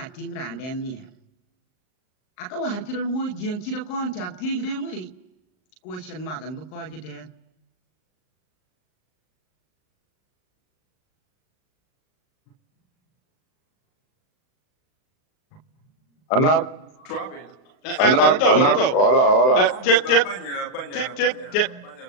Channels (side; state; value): right; late; 38 ms